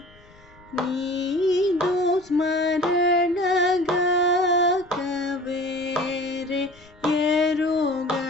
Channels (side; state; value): left; noise; rumble, 26 dB below the sound